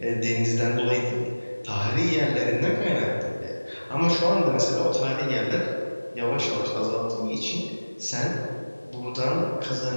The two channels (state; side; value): inverted; both; correlation -1.00